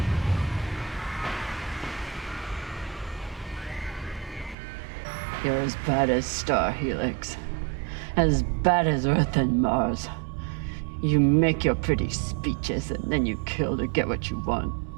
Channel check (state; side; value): drops out; left; at 4.5 s